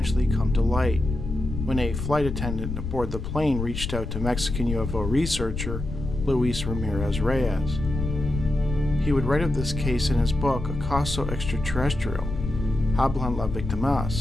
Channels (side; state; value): left; noise; rumble, 6 dB below the sound